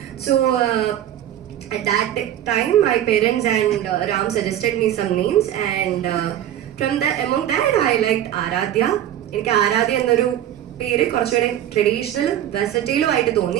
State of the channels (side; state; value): left; quieter; 11.5 dB